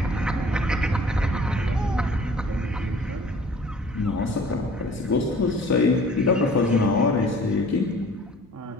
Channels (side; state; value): both; normal; correlation 0.50